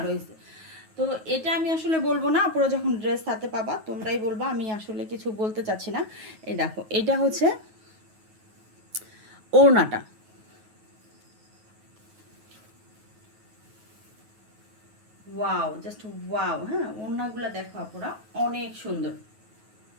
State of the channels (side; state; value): left; late; 9.4 ms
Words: হয়েছে। তো এটা আমি আসলে বলবো না, আপুরা যখন ড্রেস হাতে পাবা তোমরাই বলবা, আমি আসলে কিছু বলতে চাচ্ছি না। এই দেখো এটা হচ্ছে ওড়নাটা, ওয়াও জাস্ট ওয়াও। হ্যাঁ ওড়নাগুলো দেখো আপুরা অনেক সুন্দর।